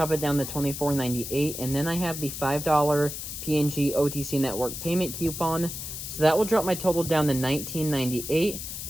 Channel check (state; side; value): noise; left; hiss, 7 dB below the sound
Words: it down to $24.98. And then I have the $5 P&G OTC Network payment coupon. So that will drop my total down to $19.98.